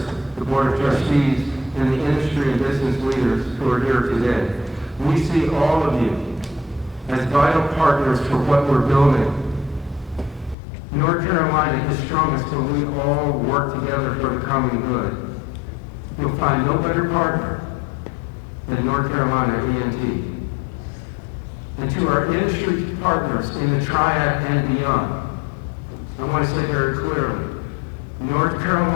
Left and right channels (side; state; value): right; drops out; at 10.6 s